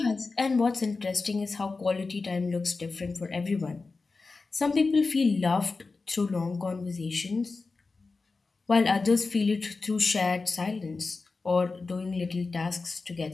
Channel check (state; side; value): quieter; right; 4.0 dB